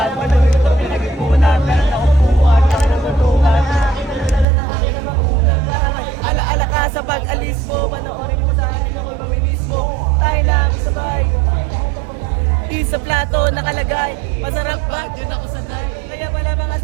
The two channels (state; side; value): drops out; left; at 4.5 s